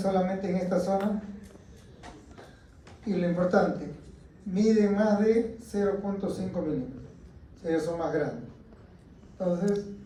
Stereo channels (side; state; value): both; identical; correlation 1.00